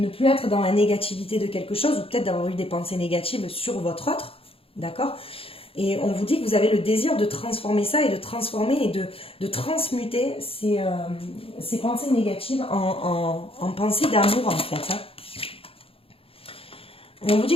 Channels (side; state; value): right; late; 0.27 ms